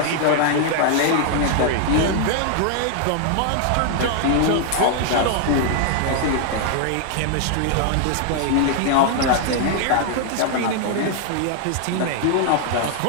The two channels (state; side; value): different; both; correlation 0.00